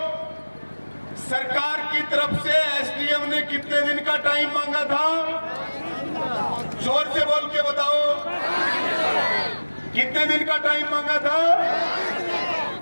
सरकार की तरफ से एसडीएम ने कितने दिन का टाइम मांगा था? जोर से बोल के बताओ, कितने दिन का टाइम मांगा था?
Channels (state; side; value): inverted; both; correlation -1.00